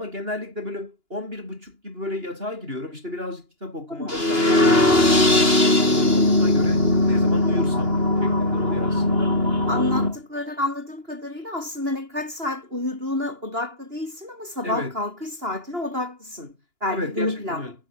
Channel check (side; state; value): left; late; 2.9 ms